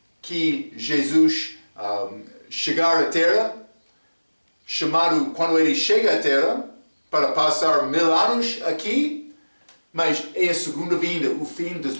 que Jesus chegar à terra, chamado quando ele chega à terra para passar 1000 anos aqui, mas é a segunda vinda, o fim da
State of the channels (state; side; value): inverted; both; correlation -1.00